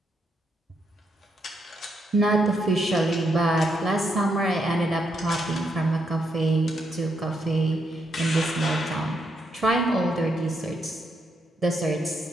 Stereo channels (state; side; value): normal; both; correlation 0.79